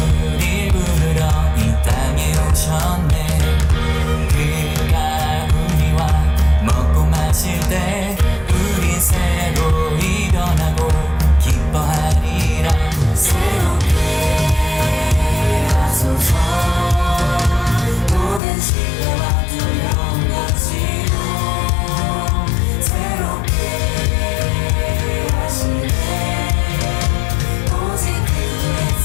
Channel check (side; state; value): right; drops out; at 18.4 s